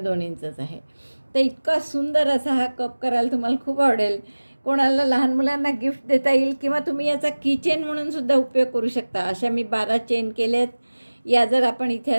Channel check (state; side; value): inverted; both; correlation -1.00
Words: इंचच आहे. तर इतका सुंदर असा हा कप करायला तुम्हाला खूप आवडेल. कोणाला लहान मुलांना गिफ्ट देता येईल किंवा तुम्ही याचा किचेन म्हणून सुद्धा उपयोग करू शकता. अशा मी 12 चेन केल्यात. या जर आपण इथे